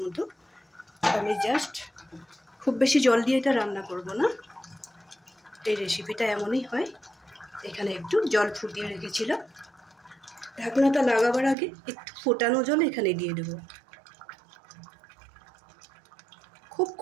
মতো। আমি জাস্ট খুব বেশি জল দিয়ে এটা রান্না করব না, এই রেসিপিটা এমনই হয়। এখানে একটু জল ফুটিয়ে রেখেছিলাম, ঢাকনাটা লাগাবার আগে একটু ফোটানো জল এখানে দিয়ে দেব। খুব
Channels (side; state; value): left; drops out; at 11.6 s